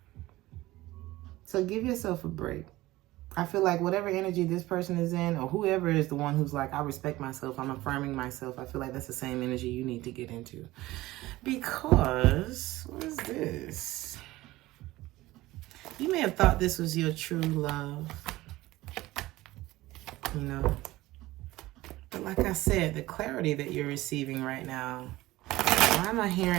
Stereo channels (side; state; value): left; quieter; 17.9 dB